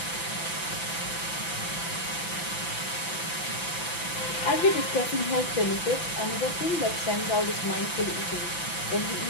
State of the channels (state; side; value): late; right; 5.9 ms